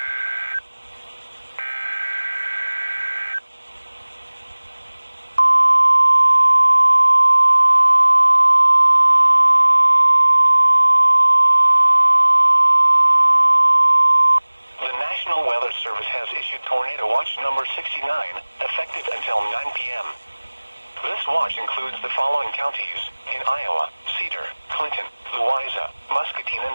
The National Weather Service has issued Tornado Watch number 69, effective until 9 p.m. This watch includes the following counties in Iowa: Cedar, Clinton, Louisa, Muscatine,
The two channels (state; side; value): inverted; both; correlation -1.00